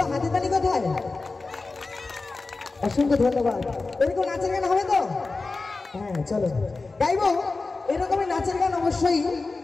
হাতে তালি কোথায়? অসংখ্য ধন্যবাদ। এরকম নাচের গান হবে তো? হ্যাঁ চলো গাইবো এরকমই নাচের গান, অবশ্যই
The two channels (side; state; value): right; quieter; 3.7 dB